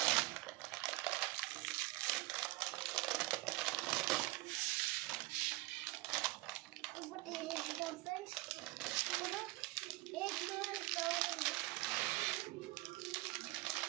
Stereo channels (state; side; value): quieter; left; 21.3 dB